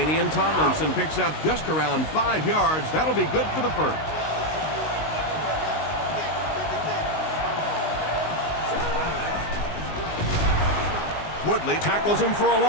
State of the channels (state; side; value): late; right; 19 ms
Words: Tomlinson picks up just around 5 yards. That'll be good for the first. Woodley tackles him for a